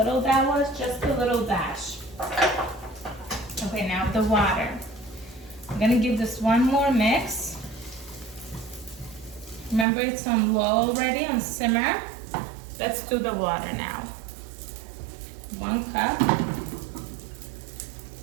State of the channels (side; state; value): left; drops out; at 9.9 s